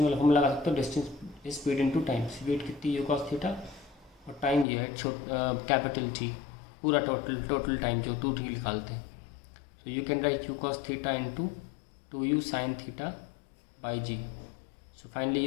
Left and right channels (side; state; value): right; drops out; at 4.7 s